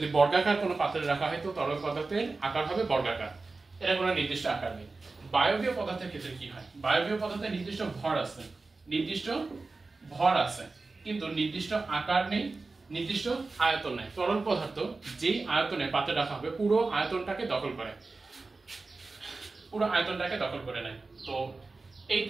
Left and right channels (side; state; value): left; quieter; 3.7 dB